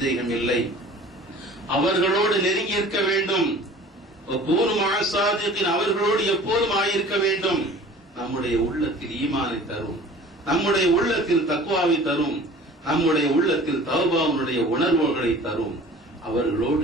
இல்லை. அவர்களோடு நெருங்கி இருக்க வேண்டும். அவர்களோடு எப்போதும் ஆயிருக்க வேண்டும். நம்முடைய உள்ளத்தில் ஈமானை தரும், நம்முடைய உள்ளத்தில் தக்வாவை தரும், நம்முடைய உள்ளத்தில் தௌபாவுடைய உணர்வுகளை தரும். அவர்களோடு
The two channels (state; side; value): normal; both; correlation 0.45